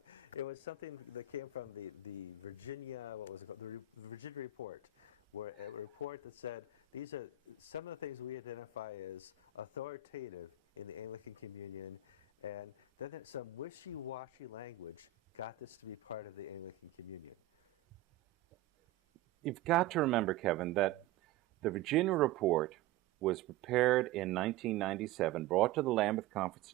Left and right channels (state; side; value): quieter; left; 9.4 dB